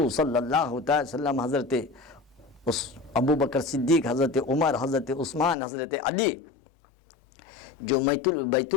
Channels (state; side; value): drops out; right; at 5.6 s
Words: सल्लल्लाहु अलैहि वसल्लम हज़रत उस अबू बकर सिद्दीक़, हज़रत उमर, हज़रत उस्मान, हज़रत अली जो